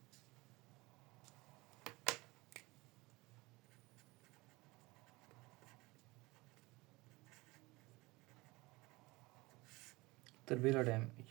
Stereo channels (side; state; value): left; quieter; 22.4 dB